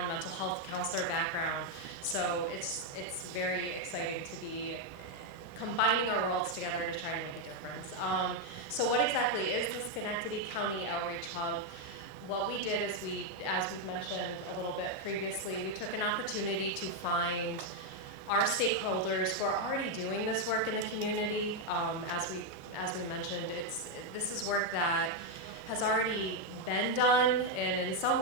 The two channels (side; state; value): right; late; 28 ms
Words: mental health counselor background. So it's very exciting to be combining our worlds together to try to make a difference. So what exactly is the Schenectady County Outreach Hub? What we did is as we've mentioned a little bit previously, we took an opportunity to find our stakeholders who are already doing this work in the community. As we mentioned, this is work that has already been done, and in some